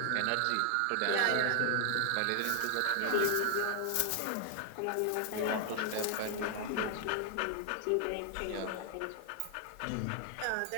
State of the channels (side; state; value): both; different; correlation 0.00